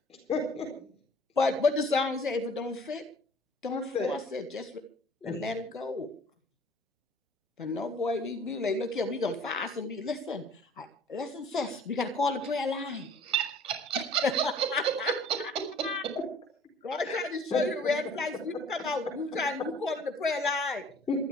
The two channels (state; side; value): normal; both; correlation 0.52